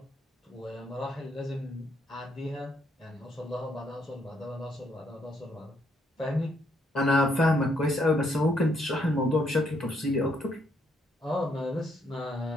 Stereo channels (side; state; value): both; normal; correlation 0.73